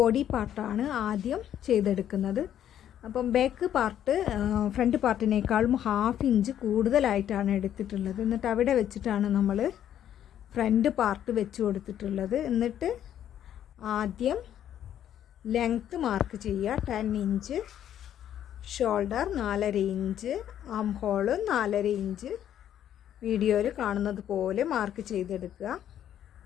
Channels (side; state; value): right; quieter; 10.5 dB